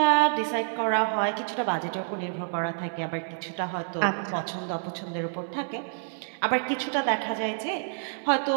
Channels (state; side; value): silent; left; 59 dB below the other